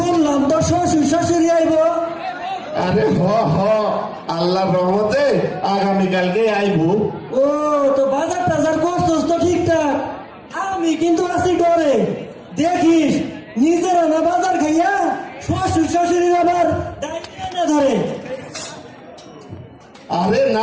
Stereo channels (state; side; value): identical; both; correlation 1.00